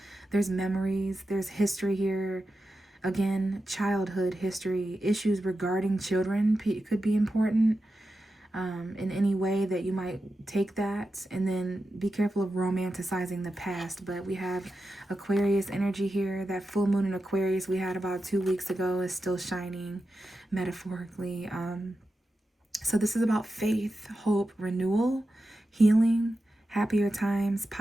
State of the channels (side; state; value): both; normal; correlation 0.91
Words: There's memories, there's history here. Again, childhood history, issues regarding children could be important. In any way that you might take that, and then be careful of romanticizing the past. But we have Aquarius energy here. That full moon in Aquarius we had about 2 weeks ago is still shining metaphorically. So this is about faith, hope, renewal, healing, happier times,